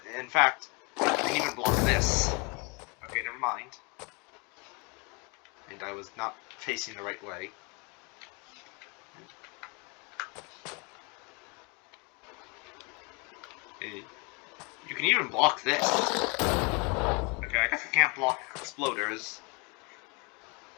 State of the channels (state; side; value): quieter; right; 31.3 dB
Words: In fact, you can even block this. Okay, never mind. And I was not facing the right way. Okay. You can even block this. Okay, I guess I can't block exploders.